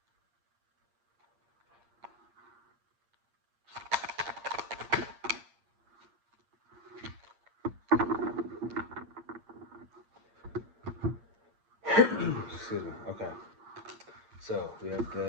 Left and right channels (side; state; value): left; late; 8.6 ms